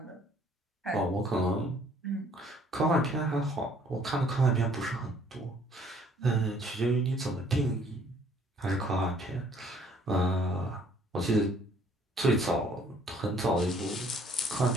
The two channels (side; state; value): both; normal; correlation 0.60